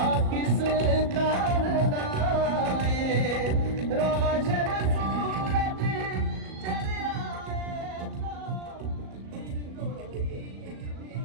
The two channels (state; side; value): late; left; 37 ms